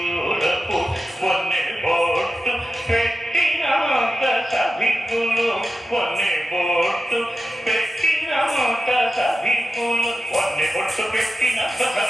పొన్నె బొట్టు పెట్టినంత సభికులు పొన్నె బొట్టు పెట్టినంత సభికులు పొన్నె బొట్టు పెట్టినంత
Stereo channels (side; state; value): both; normal; correlation 0.91